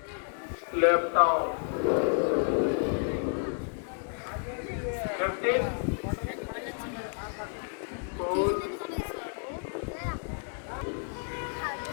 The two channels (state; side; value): silent; right; 55 dB below the other